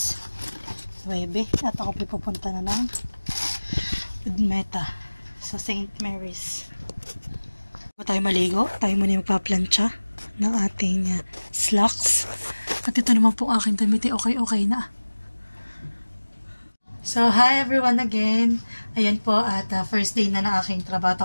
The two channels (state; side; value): inverted; both; correlation -1.00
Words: 9 at ako pupunta na ng Udmeta sa St. Mary's. Bago tayo maligo, tayo muna magpa-plancha ng ating slacks. At ito naman po aking damit, okay na. So, hi everyone again. Ayan po, at first day na ng aking